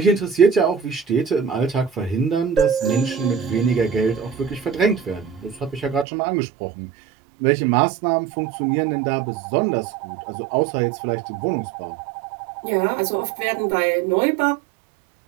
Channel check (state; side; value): drops out; left; at 6.1 s